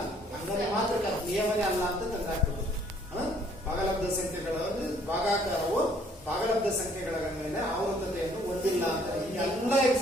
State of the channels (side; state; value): both; normal; correlation 0.62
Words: ಹಂಗನೆ ಮಾತ್ರ ನಿಯಮನೇ ಅಲ್ಲ ಅಂತ ತಂದಾಕ್ತದೆ. ಭಾಗಲಬ್ಧ ಸಂಖ್ಯೆಗಳ ಭಾಗಾಕಾರವು ಭಾಗಲಬ್ಧ ಸಂಖ್ಯೆಗಳ ಮೇಲೆ ಆವರ್ತತೆಯನ್ನು ಹೊಂದಿಲ್ಲ ಅಂತ ಈ ಎಲ್ಲ